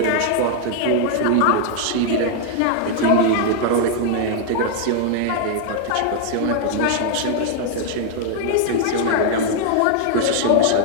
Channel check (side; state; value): both; different; correlation 0.00